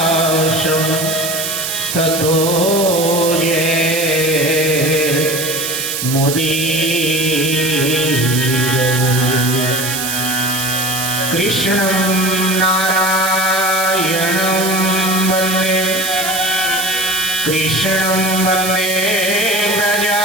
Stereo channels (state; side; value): noise; right; hiss, 3 dB below the sound